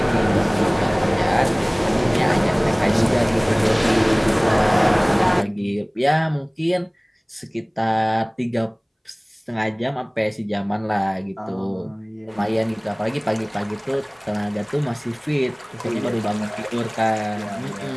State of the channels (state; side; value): identical; both; correlation 1.00